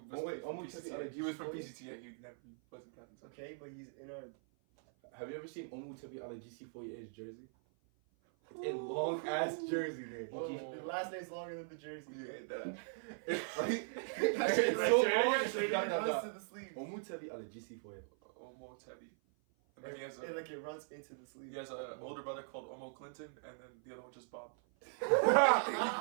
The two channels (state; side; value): silent; left; 51 dB below the other